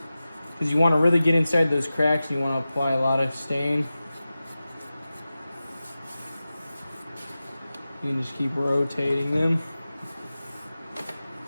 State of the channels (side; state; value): both; inverted; correlation -0.95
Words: because you want to really get inside those cracks and you want to apply a lot of stain. You can just keep rotating them.